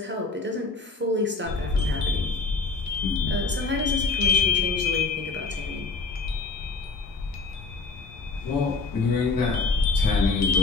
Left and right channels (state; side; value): quieter; right; 4.0 dB